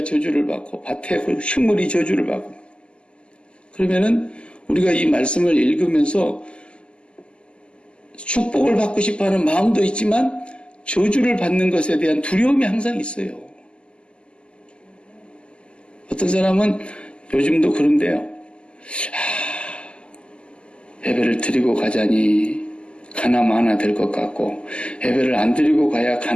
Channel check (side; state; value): right; late; 0.052 ms